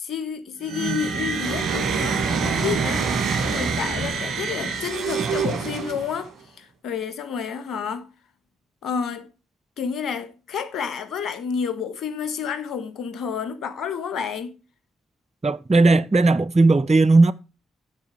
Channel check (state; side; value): normal; both; correlation 0.78